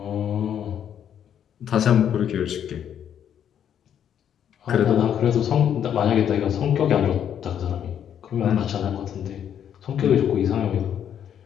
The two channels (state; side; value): quieter; right; 9.3 dB